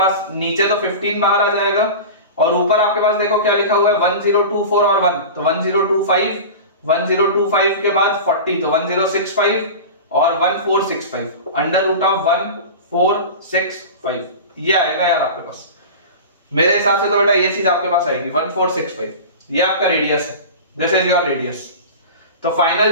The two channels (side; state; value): both; inverted; correlation -0.31